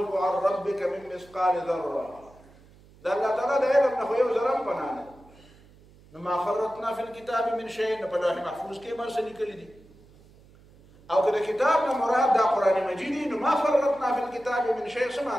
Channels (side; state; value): right; noise; hum, 26 dB below the sound